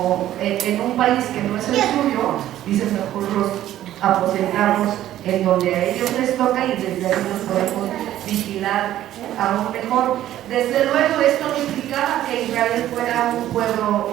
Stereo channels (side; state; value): left; quieter; 12.9 dB